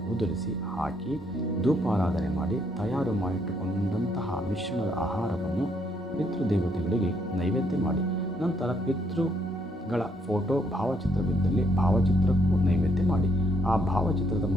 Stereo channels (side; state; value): both; normal; correlation 0.72